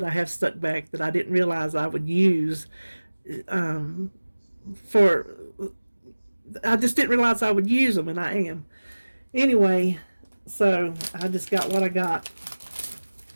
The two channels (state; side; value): inverted; both; correlation -1.00